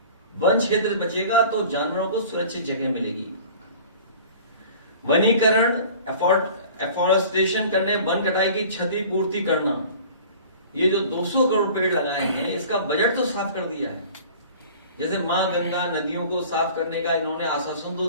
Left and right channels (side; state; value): both; inverted; correlation -0.44